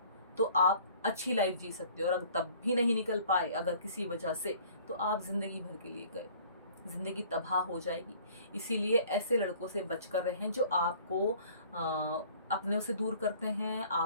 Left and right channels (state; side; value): inverted; both; correlation -0.52